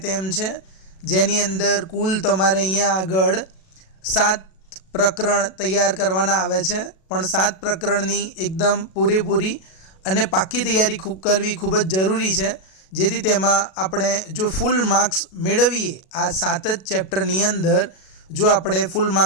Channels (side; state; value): right; late; 37 ms